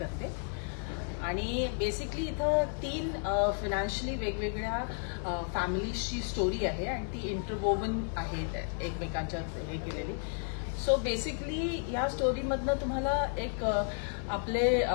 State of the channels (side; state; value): right; silent; 55 dB below the other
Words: आणि बेसिकली इथं 3 फायनान्शियली वेगवेगळ्या फॅमिलीजची स्टोरी आहे आणि ती इंटरवोवन आहे एकमेकांच्या हे केलेली. सो बेसिकली ह्या स्टोरीमधनं तुम्हाला एक आपले